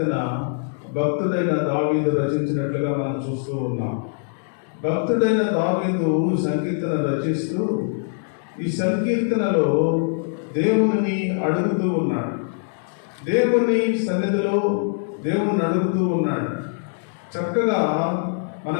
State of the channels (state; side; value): silent; right; digital silence